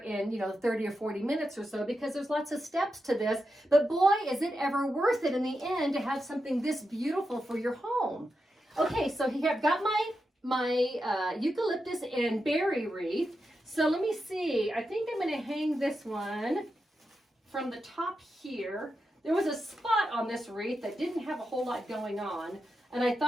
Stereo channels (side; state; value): both; normal; correlation 0.88